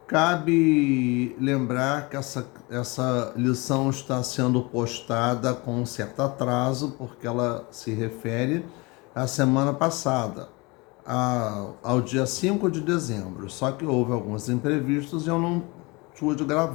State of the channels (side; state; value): right; quieter; 26.0 dB